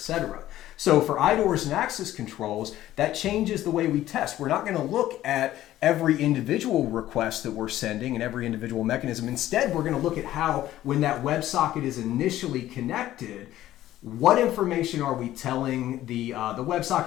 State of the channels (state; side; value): quieter; right; 13.9 dB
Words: So for IDORs and access controls, that changes the way we test. We're not going to look at every individual request that we're sending and every individual mechanism. Instead, we're going to look at how, when that WebSocket is initially connected, what information are we telling the